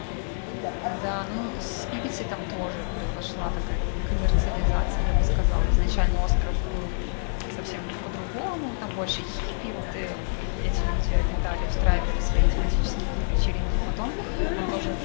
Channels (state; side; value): silent; right; digital silence